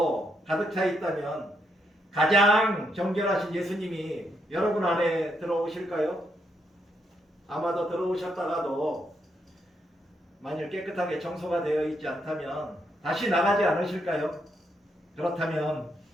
가득 차 있다면 가장 정결하신 예수님이 여러분 안에 들어오실까요? 아마도 들어오셨다가도 만일 깨끗하게 청소가 되어 있지 않다면 다시 나가지 않으실까요? 그렇다면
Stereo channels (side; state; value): both; normal; correlation 0.78